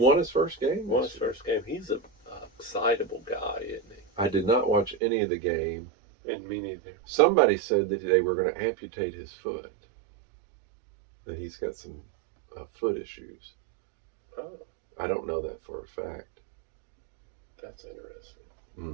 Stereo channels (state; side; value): drops out; left; at 5.0 s